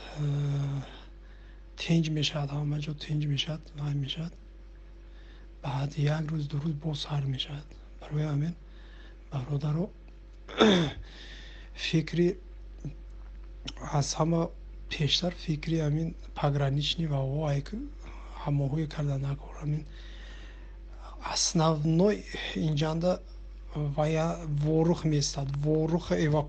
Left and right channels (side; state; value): both; identical; correlation 1.00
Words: تنج میشد، همه جا تنج میشد، نه میشد. بعد یک روز دو روز باز سر میشد. برای همین برادران فکری از همه پیشتر فکری همین پگраничный و وای هماهوی کردن نکن. همین основной اینجا ворух местад, ворух